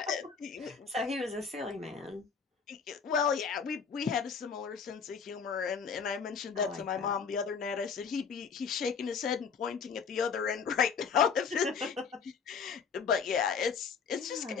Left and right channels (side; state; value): right; quieter; 6.1 dB